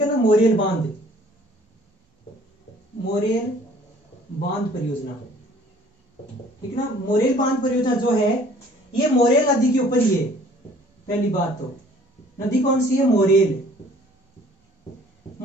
है ना, मोरेल बांध परियोजना, ठीक है ना। मोरेल बांध परियोजना जो है ये मोरेल नदी के ऊपर ही है। पहली बात तो नदी कौन सी है, मोरेल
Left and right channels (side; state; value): both; normal; correlation 0.55